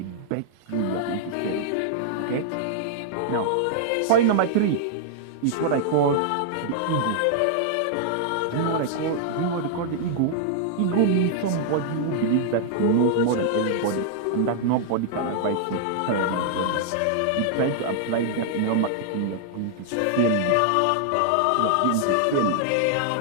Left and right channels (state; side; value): different; both; correlation -0.01